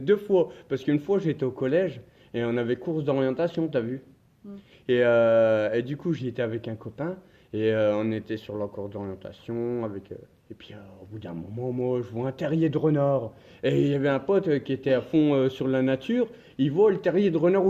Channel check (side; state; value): both; identical; correlation 1.00